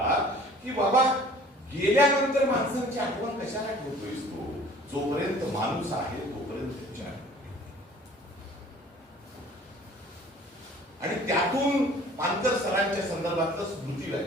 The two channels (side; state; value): both; normal; correlation 0.50